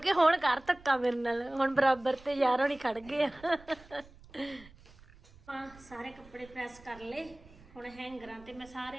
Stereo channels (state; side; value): noise; right; rumble, 23 dB below the sound